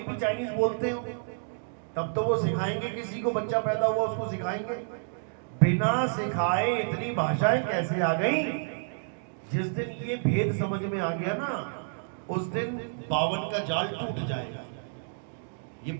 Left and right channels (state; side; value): silent; left; digital silence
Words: भी चाइनीज बोलते हो, तब तो वो सिखाएंगे। किसी को बच्चा पैदा हुआ उसको सिखाएंगे। बिना सिखाए इतनी भाषाएं कैसे आ गई? जिस दिन ये भेद समझ में आ गया ना, उस दिन 52 का जाल टूट जाएगा। ये